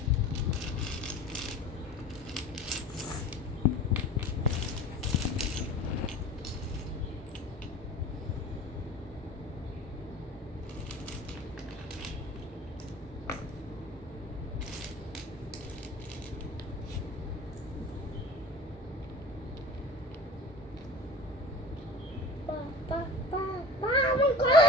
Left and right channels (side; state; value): both; normal; correlation 0.39